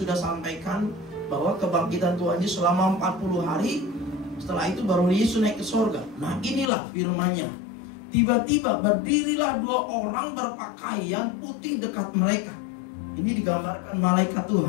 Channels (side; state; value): right; drops out; at 6.7 s